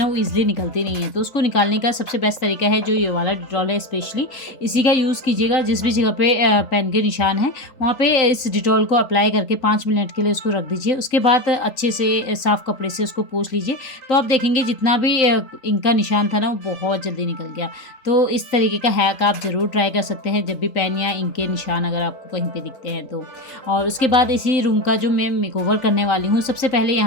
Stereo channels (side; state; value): right; late; 3.8 ms